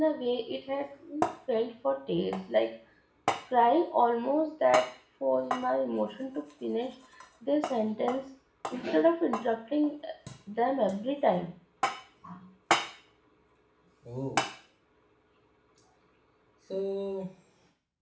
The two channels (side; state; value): both; identical; correlation 1.00